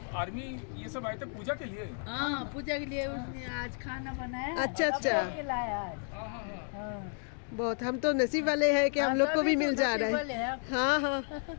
आर्मी ये सब आए थे पूजा के लिए? हाँ पूजा के लिए उसने आज खाना बनाया। अच्छा अच्छा, लाया आज। हाँ बहुत, हम तो नसीब वाले हैं कि हम लोग को भी मिल जा रहा है। हाँ हाँ,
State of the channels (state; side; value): silent; right; 56 dB below the other